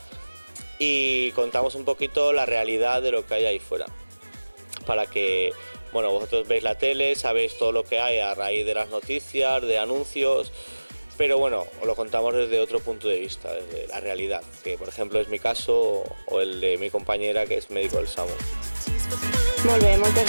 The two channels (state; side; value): inverted; both; correlation -1.00